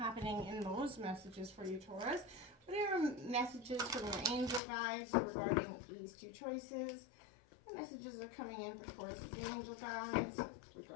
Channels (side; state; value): right; drops out; at 4.6 s